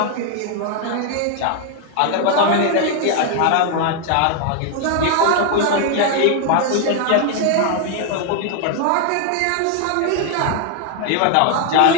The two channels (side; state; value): both; different; correlation 0.00